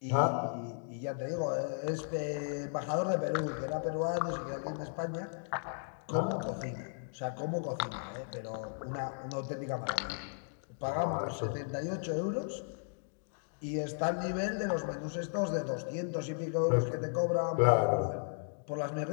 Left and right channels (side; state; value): right; silent; digital silence